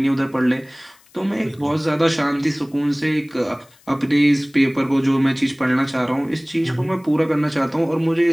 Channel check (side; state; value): left; noise; hiss, 29 dB below the sound